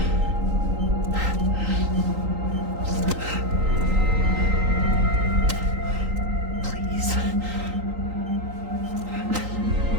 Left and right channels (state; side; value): late; left; 3.8 ms